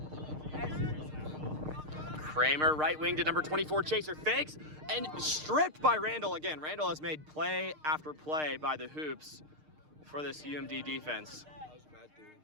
Kramer, right wing to number 24, Chaser, fakes, and stripped by Randall again. Randall has made play after play by the hoops for this UMD defense. That was Matt doing.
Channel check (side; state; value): left; late; 6.5 ms